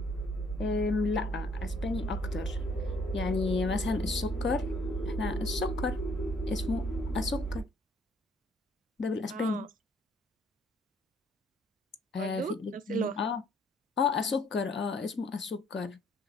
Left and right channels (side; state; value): both; normal; correlation 0.64